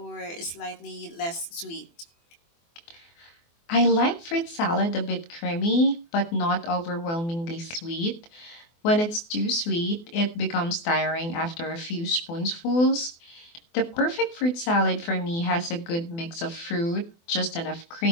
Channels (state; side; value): late; right; 24 ms